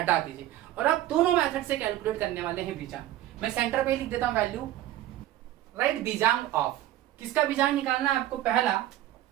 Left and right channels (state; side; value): quieter; left; 13.9 dB